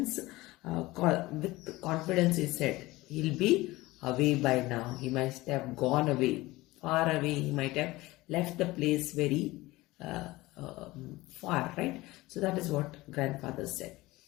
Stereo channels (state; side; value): quieter; right; 19.7 dB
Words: with confidence he said, he'll be away by now. He must have gone away, far away. He might have left the place very far, right? So that is what grandfather said.